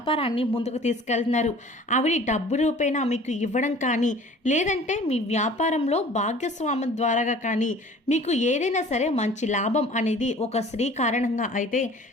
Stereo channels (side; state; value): both; normal; correlation 0.47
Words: ముందుకు తీసుకెళ్తున్నారు. డబ్బు రూపేణా మీకు ఇవ్వడం కానీ, లేదంటే మీ వ్యాపారంలో భాగ్యస్వామ్యం ద్వారా కానీ మీకు ఏదైనా సరే మంచి లాభం అనేది ఒక స్త్రీ కారణంగా అయితే